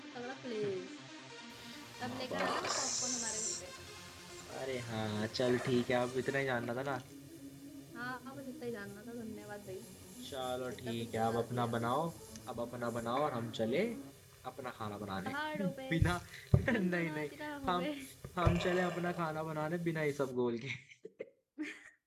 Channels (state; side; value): identical; both; correlation 1.00